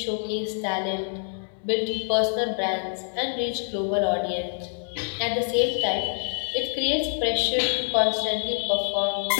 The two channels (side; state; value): right; silent; 61 dB below the other